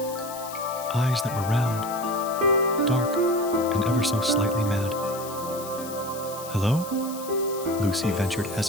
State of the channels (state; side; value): noise; left; hiss, 13 dB below the sound